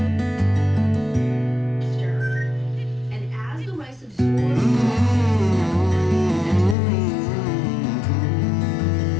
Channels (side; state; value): right; drops out; at 6.8 s